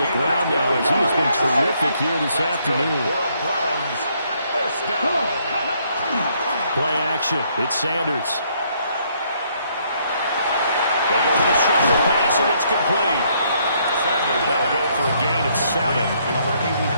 ground now as he has been terrific here this afternoon. Play action. It's Sanders. They go with a shuffle pass, and it's complete. They'll go for a gain of 7.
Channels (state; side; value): inverted; both; correlation -0.69